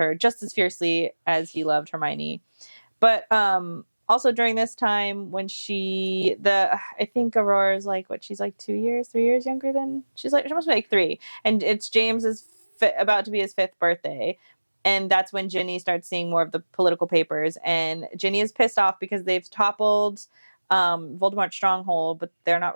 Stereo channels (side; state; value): both; inverted; correlation -1.00